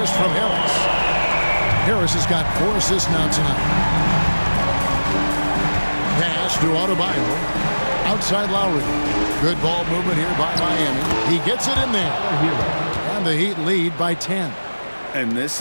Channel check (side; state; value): both; inverted; correlation -1.00